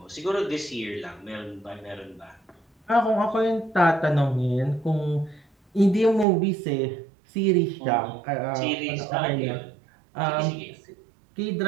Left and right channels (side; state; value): left; drops out; at 6.2 s